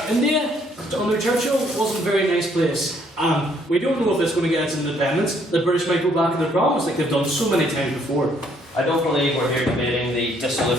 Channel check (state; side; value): normal; both; correlation 0.66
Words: India, under Churchill, wasn't a very nice place. We don't know if it's going to get its independence. The British might go back on their promise like they've done so many times before. I don't believe we're here debating the